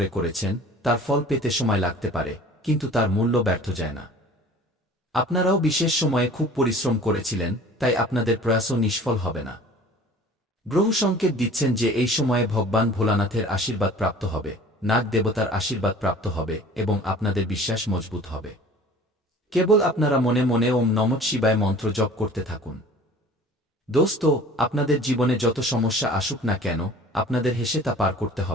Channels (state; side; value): normal; both; correlation 0.45